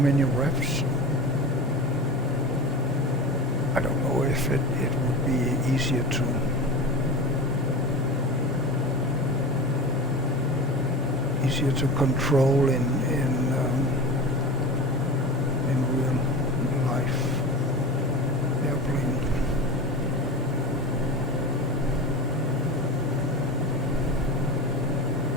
revs. I don't know if it would be easier to control in real life airplane.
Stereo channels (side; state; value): both; normal; correlation 0.30